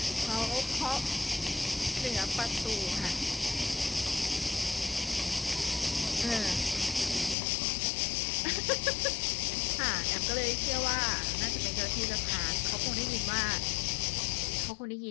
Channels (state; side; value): drops out; right; at 7.4 s